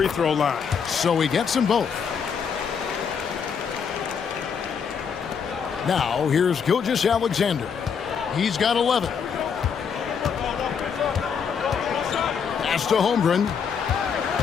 throw line. So he gets them both. Now, here's Gilgeous-Alexander. He's got 11. Pass to Holmgren.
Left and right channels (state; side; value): quieter; right; 6.7 dB